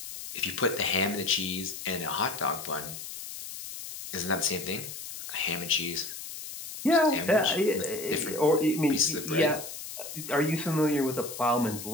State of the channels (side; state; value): left; noise; hiss, 10 dB below the sound